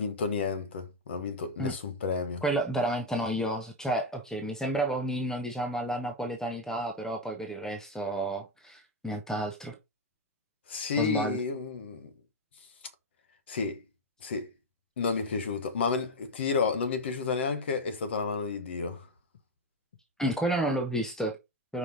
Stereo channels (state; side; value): normal; both; correlation 0.05